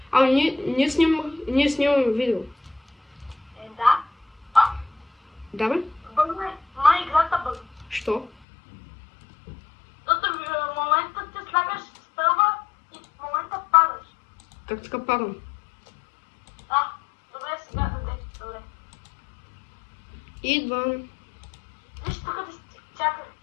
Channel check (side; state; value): right; drops out; at 8.3 s